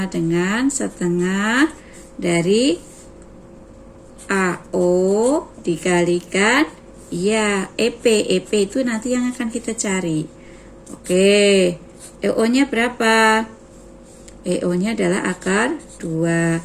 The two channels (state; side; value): identical; both; correlation 1.00